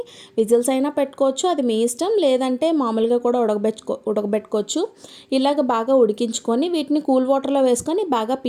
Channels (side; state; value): both; identical; correlation 1.00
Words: విజిల్స్ అయినా పెట్టుకోవచ్చు, అది మీ ఇష్టం. లేదంటే మామూలుగా కూడా ఉడకబెట్టుకోవచ్చు. ఇలాగ బాగా ఉడికించుకొని వీటిని కూల్ వాటర్లో వేసుకొని బాగా